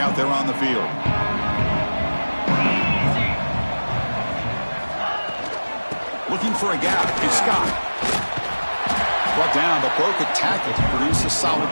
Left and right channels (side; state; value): both; inverted; correlation -1.00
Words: there on the field. Looking for a gap. It's Scott. Brought down, but broke a tackle to produce a solid